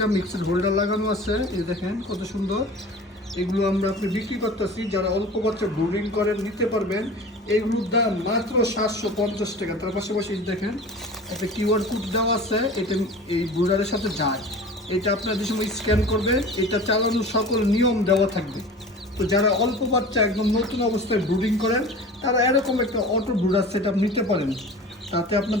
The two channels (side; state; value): both; normal; correlation 0.38